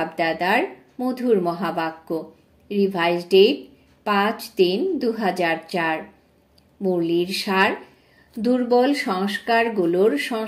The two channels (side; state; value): both; identical; correlation 1.00